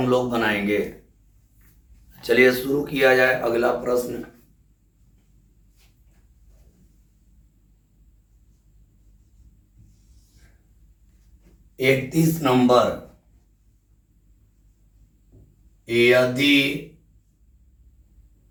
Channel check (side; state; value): both; identical; correlation 1.00